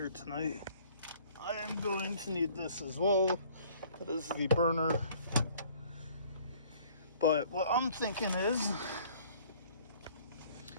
tonight. I am going to need this as well. That is the burner. But what I'm thinking is,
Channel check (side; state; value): both; inverted; correlation -0.55